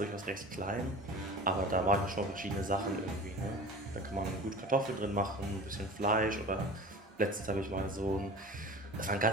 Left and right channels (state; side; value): normal; both; correlation 0.36